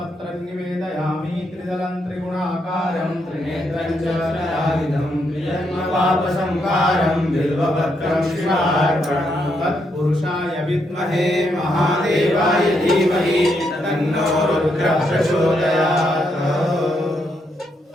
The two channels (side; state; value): both; normal; correlation 0.78